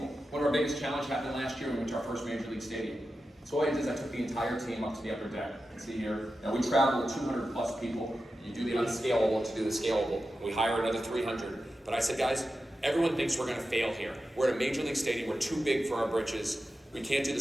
One of our biggest challenges happened last year when we went to our first Major League Stadium. So what I did is I took the entire team up to the upper deck. You can see here, now we travel with 200 plus people. You do the unscalable to do the scalable. We hire another 300. But I said, guys, everyone thinks we're gonna fail here. We're at a major league stadium, we're too big for our britches. We can't do the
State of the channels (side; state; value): both; normal; correlation 0.91